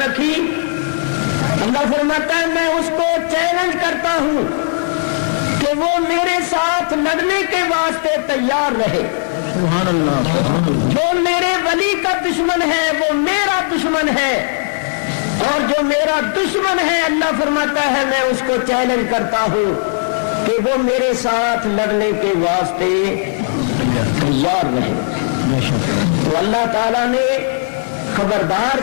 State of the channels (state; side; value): silent; right; digital silence